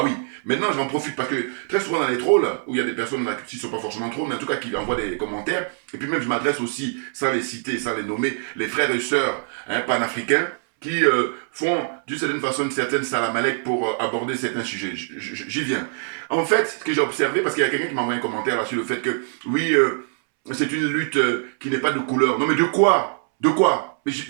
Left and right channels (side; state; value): left; silent; 63 dB below the other